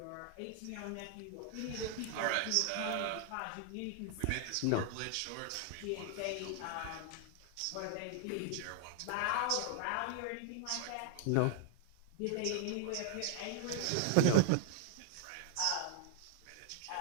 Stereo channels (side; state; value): both; different; correlation 0.00